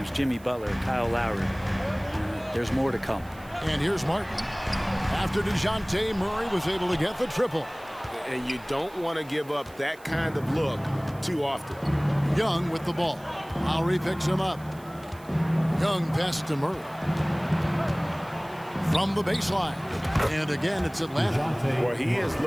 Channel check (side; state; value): right; noise; hiss, 25 dB below the sound